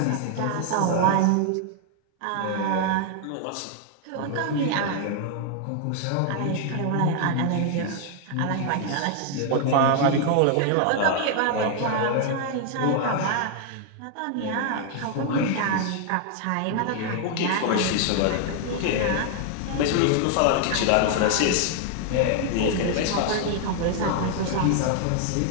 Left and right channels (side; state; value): both; different; correlation 0.00